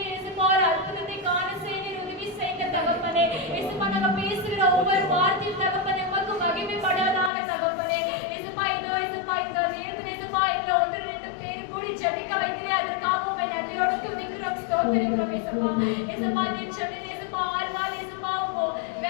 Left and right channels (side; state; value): right; drops out; at 7.3 s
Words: ஏசப்பா ஒரு அற்புதத்தை காண செய்ய நீர் உதவி செய்யுங்க தகப்பனே. ஏசப்பா நாங்க பேசுகிற ஒவ்வொரு வார்த்தையும் தகப்பனே உமக்கு மகிமைப்படாதாக தகப்பனே. ஏசப்பா இதோ ஏசப்பா இந்த நேரத்தில் ஏசப்பா எங்களை ஒன்று ரெண்டு பேர் கூடி ஜெபிக்க வைக்கிறே அதற்காக உண்மை நன்றியோடு துதிக்கிறோம் ஸ்தோத்திரிக்கிறோம் ஏசப்பா. ஏசப்பா நீர் சொன்னீர் ஏசப்பா 6 நாள் ஏசப்பா